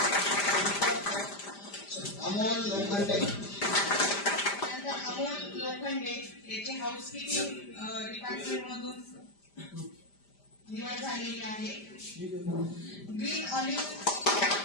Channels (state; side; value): late; right; 5.0 ms